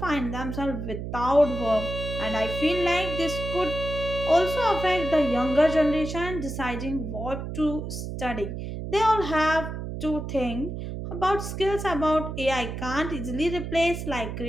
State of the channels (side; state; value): right; noise; hum, 6 dB below the sound